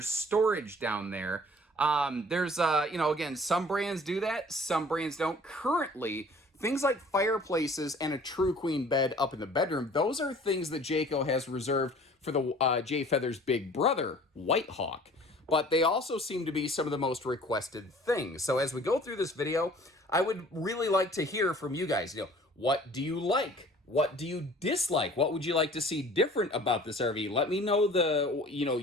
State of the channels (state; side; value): normal; both; correlation 0.50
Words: storage down there. There's, you know, again, some brands do that. Some brands don't. Currently, things like fireplaces and a true queen bed up in the bedroom, those are things that Jayco has reserved for the Jayfeather's big brother, White Hawk. But they also seem to be some of the most requested things. So as we go through this video, I would really like to hear from you guys. You know, what do you like? What do you dislike? What would you like to see different about this RV? Let me know